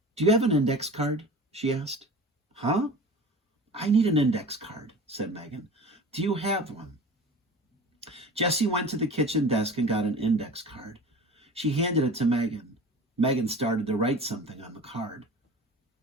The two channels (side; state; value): both; normal; correlation 0.38